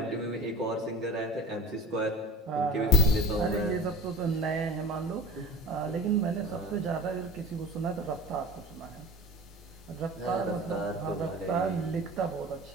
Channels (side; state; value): both; normal; correlation 0.38